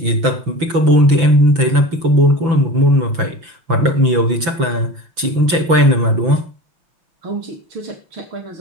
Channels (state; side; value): late; left; 6.0 ms